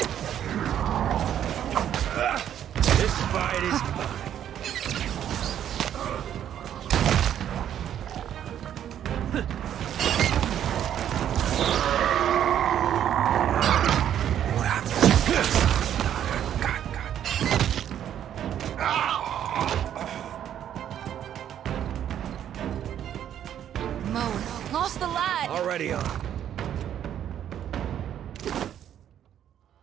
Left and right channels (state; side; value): quieter; left; 10.2 dB